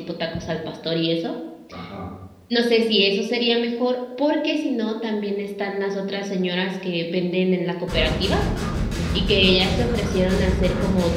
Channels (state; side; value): identical; both; correlation 1.00